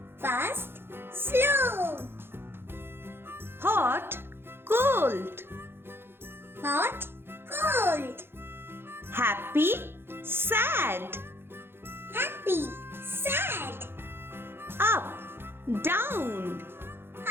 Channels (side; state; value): left; late; 0.11 ms